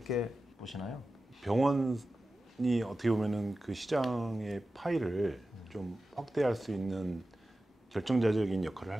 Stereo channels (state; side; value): normal; both; correlation 0.94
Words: 보시나요? 병원이 어떻게 보면은 그 시장의 파일을 좀 확대할 수 있는 결정자적인 역할을 할